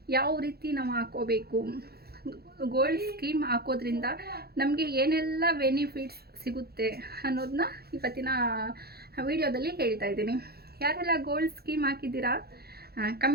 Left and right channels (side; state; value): left; late; 0.46 ms